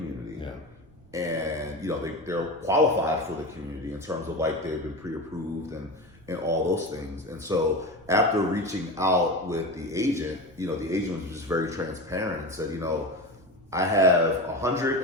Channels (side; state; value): right; noise; rumble, 26 dB below the sound